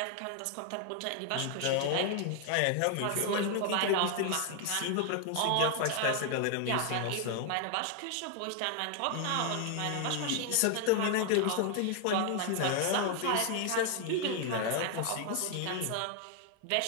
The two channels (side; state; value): both; different; correlation 0.00